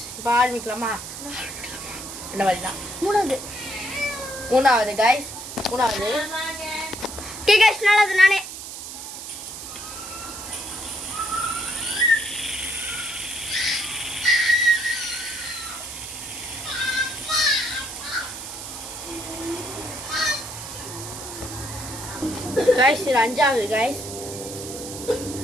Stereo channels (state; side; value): noise; right; hiss, 10 dB below the sound